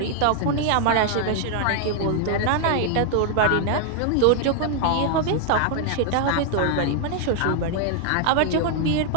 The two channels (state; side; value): different; both; correlation 0.00